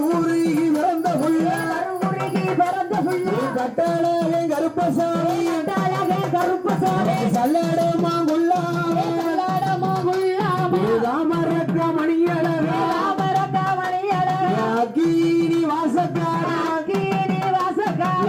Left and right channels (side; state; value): both; identical; correlation 1.00